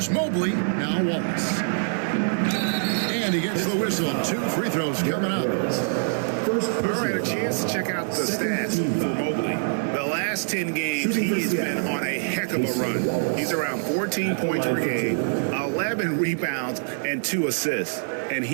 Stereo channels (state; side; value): silent; left; 62 dB below the other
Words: Mobley. Now Wallace. And he gets the whistle. 2 free throws coming up. All right, a chance to check out the stats for Mobley. The last 10 games, he has been on a heck of a run. He's around 14 points per game, 11 rebounds, and 2 assists. And